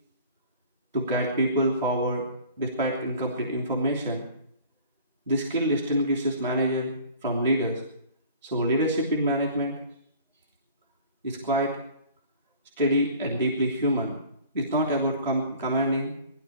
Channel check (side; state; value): both; inverted; correlation -0.47